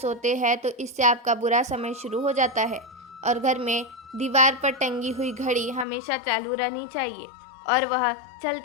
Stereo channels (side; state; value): right; drops out; at 5.9 s